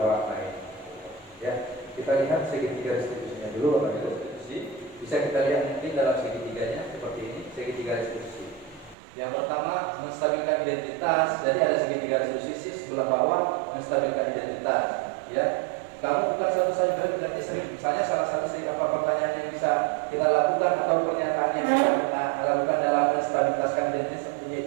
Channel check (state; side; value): drops out; left; at 9.0 s